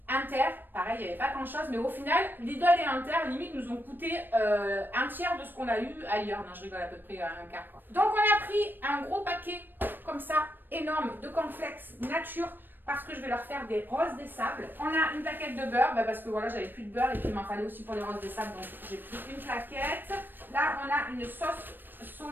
Inter, pareil, il n'y avait pas grand chose, mais au final, Lidl et Inter, limite, nous ont coûté un tiers de ce qu'on a eu ailleurs. Non, je rigole, à peu près un quart, quoi. Donc, on a pris un gros paquet, comme ça, énorme, de cornflakes nature, parce que je vais leur faire des roses des sables. On a une plaquette de beurre, parce que voilà, j'avais plus de beurre et puis il m'en fallait aussi pour les roses des sables, donc j'ai pris une plaquette. Là, on a une sauce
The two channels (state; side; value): late; left; 0.094 ms